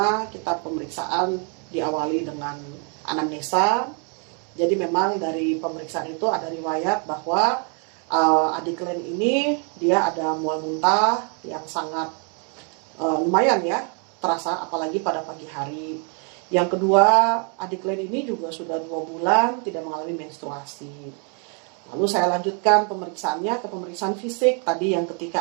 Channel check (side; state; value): left; quieter; 39.7 dB